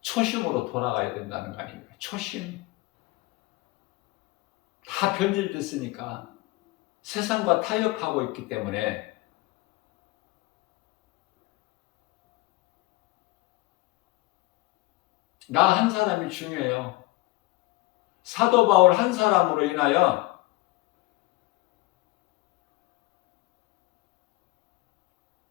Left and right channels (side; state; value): right; quieter; 20.1 dB